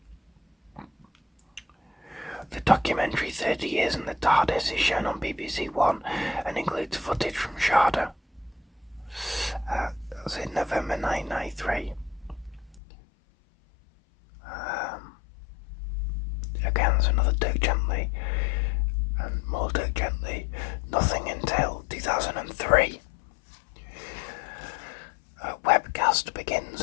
The documentary 30 Years in the TARDIS is shown on BBC One and includes footage from Sharda. That was in November 1993. Again, there's another Dirk Gently, and more Dirk Gently. Nothing until 2003. A webcast begins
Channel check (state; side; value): drops out; right; at 12.8 s